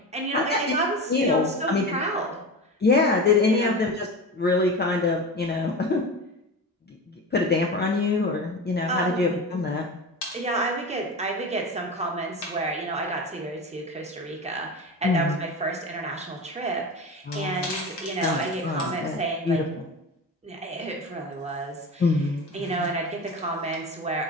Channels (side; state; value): both; normal; correlation 0.27